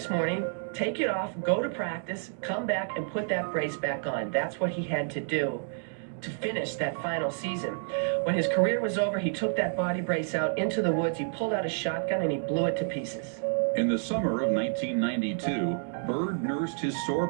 morning, take it off, go to practice, come back and put that brace back on. That's what he had to do to finish that final season. When his career was over, he took that body brace out into the woods, he pulled out a shotgun and he blew it to pieces. In the summer of 1992, Bird nursed his sore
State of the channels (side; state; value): left; silent; digital silence